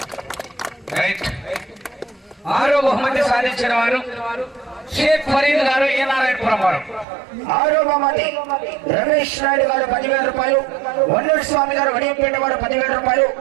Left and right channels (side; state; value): left; drops out; at 7.1 s